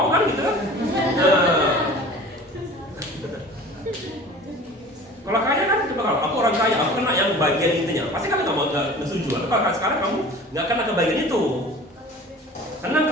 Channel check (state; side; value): normal; both; correlation 0.42